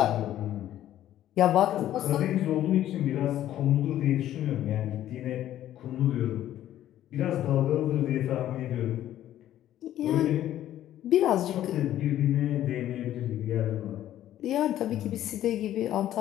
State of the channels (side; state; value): right; quieter; 12.5 dB